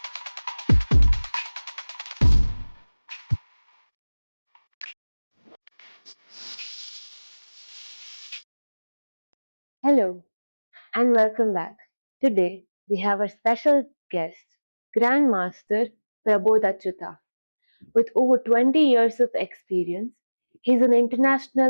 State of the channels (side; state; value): both; inverted; correlation -1.00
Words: Hello and welcome back. Today we have a special guest, Grandmaster Prabodh. With over 20 years of experience, he's an